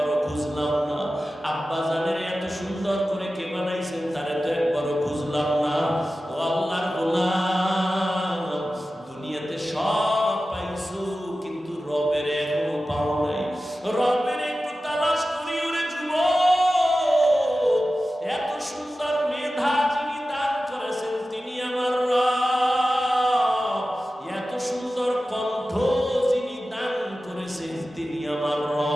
খুঁজলাম না। আব্বা জানের এত সুন্দর করে কে বানাইছেন, তারে তো একবারও খুঁজলাম না। ও আল্লাহর গোলাম, দুনিয়াতে সব পাইছো, কিন্তু রবের এখনো পাও নাই। রবের একটু তালাশ করি ওরে যুবক। এত সুন্দর মেধা যিনি দান করেছেন তিনি আমার রব। এত সুন্দর কণ্ঠ যিনি দান করেছেন তিনি আমার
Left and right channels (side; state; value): both; normal; correlation 0.94